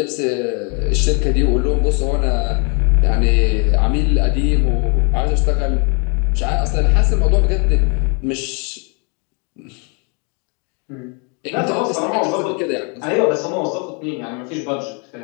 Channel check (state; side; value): quieter; right; 35.4 dB